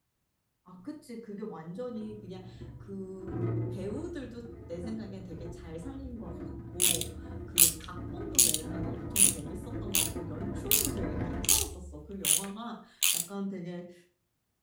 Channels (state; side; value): identical; both; correlation 1.00